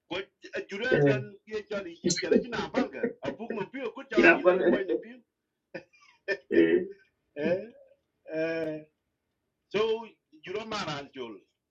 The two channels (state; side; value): identical; both; correlation 1.00